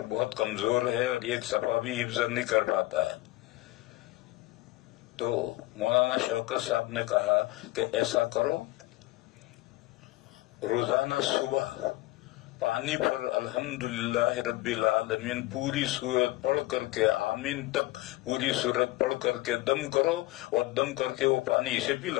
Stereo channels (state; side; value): quieter; right; 19.0 dB